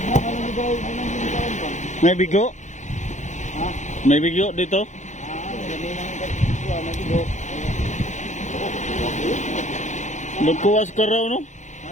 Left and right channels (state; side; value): late; right; 0.35 ms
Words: May bigo? May bigo dito? Magkuwas ka raw, no?